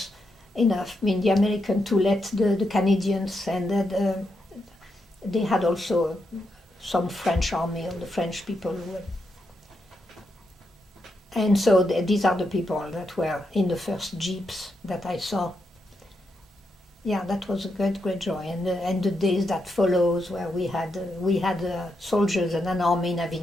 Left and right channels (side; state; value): both; normal; correlation 0.83